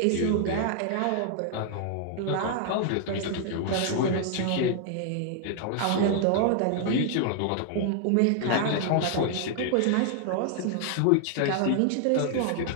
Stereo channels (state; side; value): different; both; correlation 0.00